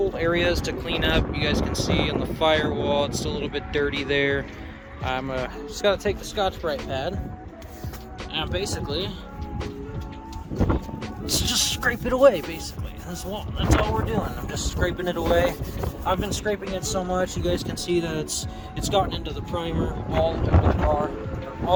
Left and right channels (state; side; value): identical; both; correlation 1.00